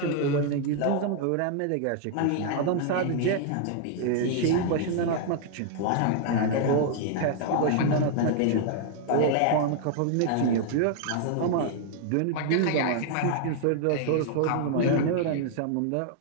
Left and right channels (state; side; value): different; both; correlation 0.00